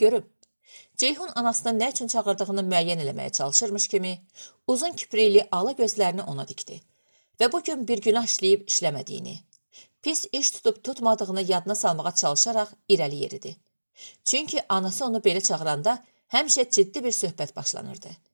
görüm. Ceyhun anasının nə üçün çağırdığını müəyyən eləməyə çalışırmış kimi, uzun kiprikli ala gözlərini ona dikdi və bugün bir günah işləyib işləmədiyini, pis iş tutub tutmadığını yadına salmağa çalışaraq irəli yeridi. Çünki anası onu belə çağıranda həmişə ciddi bir söhbət başlanırdı.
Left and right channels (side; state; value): both; inverted; correlation -1.00